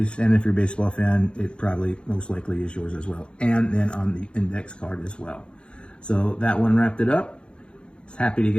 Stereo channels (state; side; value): late; right; 0.055 ms